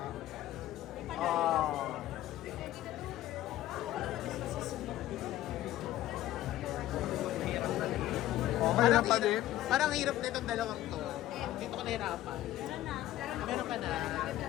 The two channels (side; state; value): right; quieter; 14.3 dB